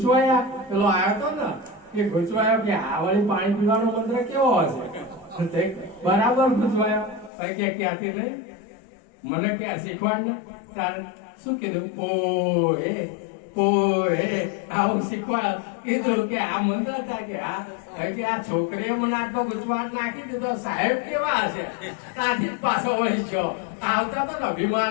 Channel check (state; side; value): drops out; right; at 7.3 s